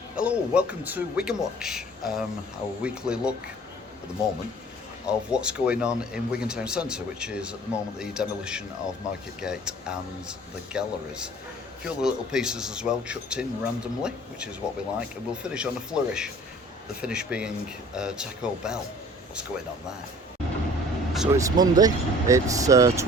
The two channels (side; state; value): both; normal; correlation 0.49